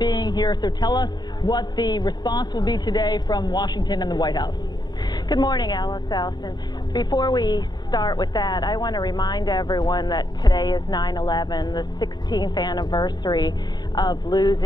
here. So tell us what the response will be today from Washington and the White House. Good morning, Allison. Before we start with that, I want to remind everyone that today is 9/11, the 16th anniversary of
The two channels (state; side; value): late; right; 0.20 ms